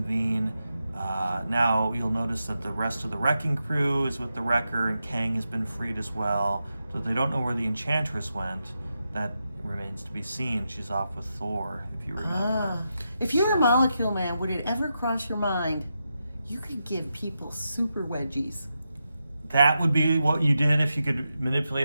Now you'll notice that the rest of the Wrecking Crew is with the Wrecker and Kang has been freed as well. So they don't know where the Enchantress went. That remains to be seen. She's off with Thor, if you remember. If you were a Molecule Man, would it ever cross your mind you could give people super wedgies? That would be what you did if you could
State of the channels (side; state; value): both; inverted; correlation -0.87